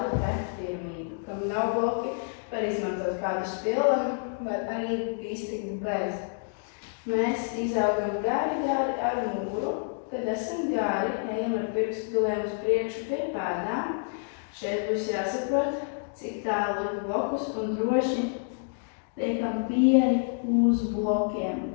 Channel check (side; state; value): right; silent; digital silence